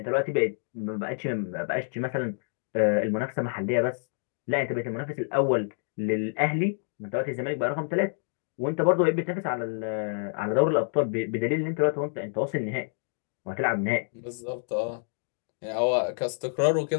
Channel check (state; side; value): silent; right; digital silence